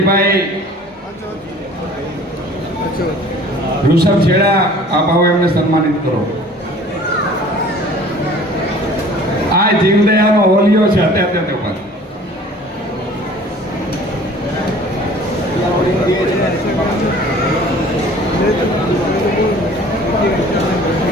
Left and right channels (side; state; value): both; normal; correlation 0.49